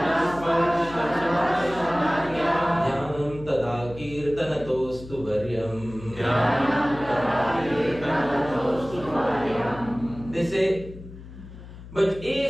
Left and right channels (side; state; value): left; noise; hum, 15 dB below the sound